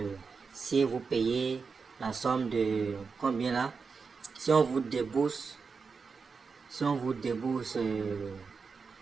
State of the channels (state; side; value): quieter; left; 5.1 dB